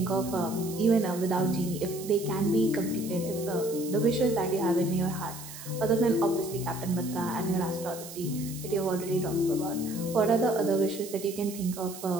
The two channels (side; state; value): right; noise; hiss, 13 dB below the sound